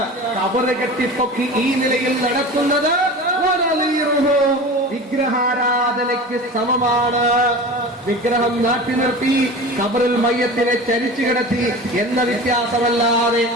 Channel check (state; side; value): normal; both; correlation 0.34